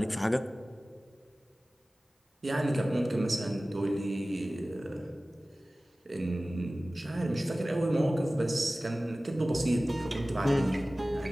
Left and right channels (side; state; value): both; normal; correlation 0.97